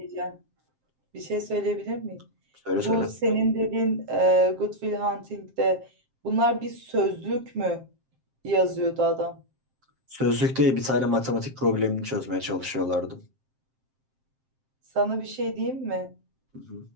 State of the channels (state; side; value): late; left; 7.6 ms